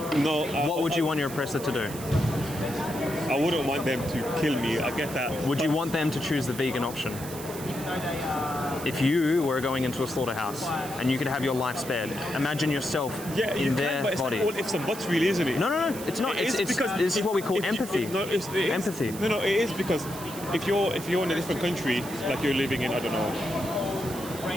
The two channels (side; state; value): right; noise; hiss, 13 dB below the sound